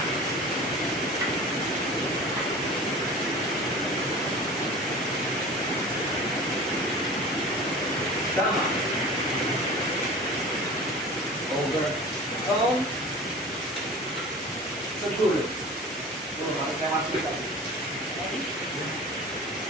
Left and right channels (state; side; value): normal; both; correlation 0.38